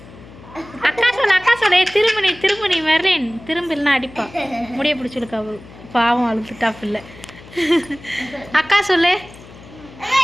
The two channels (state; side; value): noise; left; hum, 20 dB below the sound